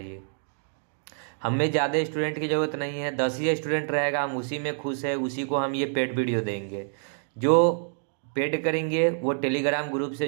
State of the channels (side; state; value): left; silent; digital silence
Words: हमें ज़्यादा स्टूडेंट की ज़रूरत नहीं है, 10 ही स्टूडेंट रहेगा, हम उसी में खुश है, उसी को हम ये पेड वीडियो देंगे। जो पेड करेंगे वो टेलीग्राम ग्रुप